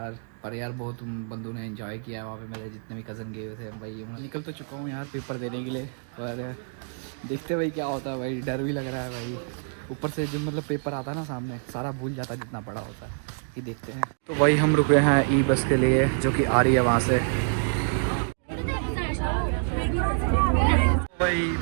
पर यार बहुत बंदों ने एंजॉय किया है वहाँ पे, मेरे जितने भी कज़न गए हुए थे भाई। मैं निकल तो चुका हूँ यार पेपर देने के लिए, पर देखते भाई क्या होता है भाई। डर भी लग रहा है भाई, ऊपर से जो मतलब पेपर आता है ना सामने, सारा भूल जाता है जितना पढ़ा होता है। ये देखते हैं। तो भाई हम रुके हैं ई बस के लिए जो कि आ रही है वहाँ से। भाई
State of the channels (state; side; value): silent; left; digital silence